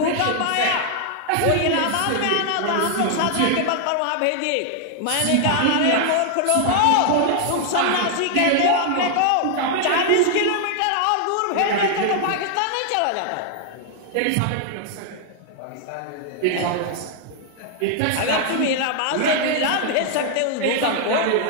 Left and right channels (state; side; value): different; both; correlation 0.00